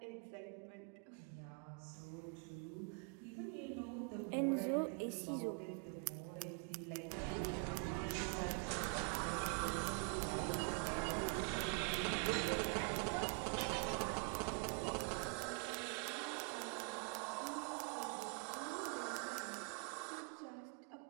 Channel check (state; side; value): quieter; left; 36.8 dB